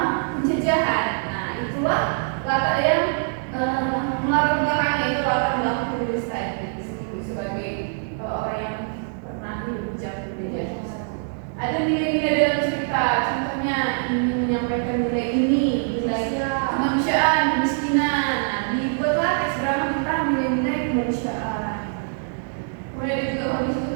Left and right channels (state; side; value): silent; left; digital silence